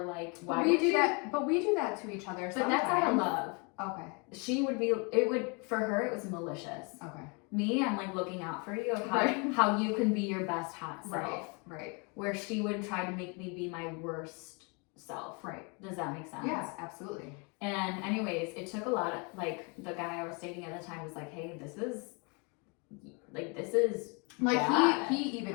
like why we would do you? that. But we do that to each other. But Sometimes. that's out of love. Okay. She would be. It would for her. It was malicious. Okay. Me, I'm like looking out for you of how Right. how you can be your best hot self. Right. Right. Where she would try to make me be my worst self. Right. Does that make sense? Yes, absolutely. And anyways, it took a lot of like the guy I was dating at the time was like, hey, this is Like bad. he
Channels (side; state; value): right; quieter; 32.5 dB